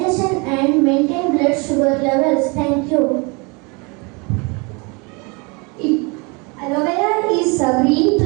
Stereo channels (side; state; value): left; quieter; 29.9 dB